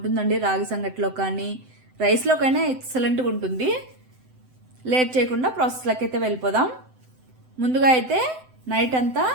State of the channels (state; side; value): late; left; 7.8 ms